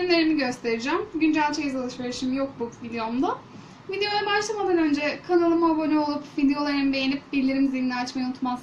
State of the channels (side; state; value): both; identical; correlation 1.00